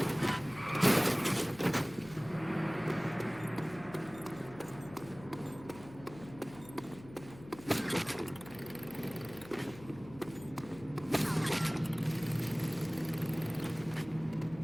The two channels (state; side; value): noise; left; hum, 18 dB below the sound